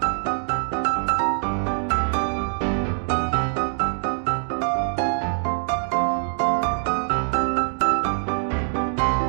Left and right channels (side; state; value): left; silent; 63 dB below the other